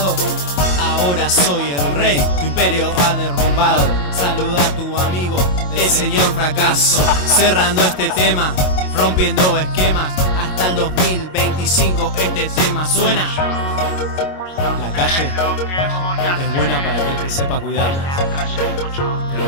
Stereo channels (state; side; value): late; right; 22 ms